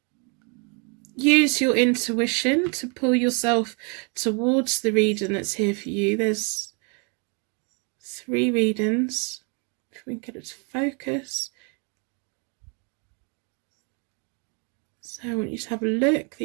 use your intuition to pull yourself towards the reading that's here for you. There's 3 readings. If we can get it to focus. So I want you to have a look.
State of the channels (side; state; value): left; quieter; 35.3 dB